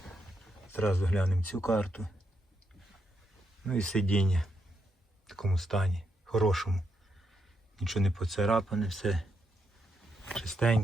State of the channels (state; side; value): normal; both; correlation 0.81